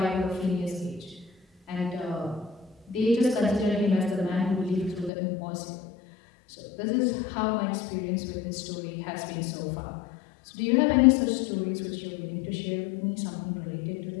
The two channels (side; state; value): right; drops out; at 5.1 s